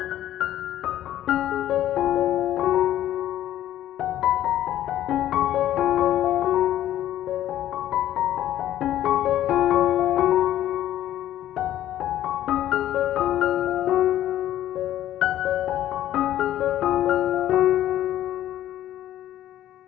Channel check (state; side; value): quieter; right; 12.5 dB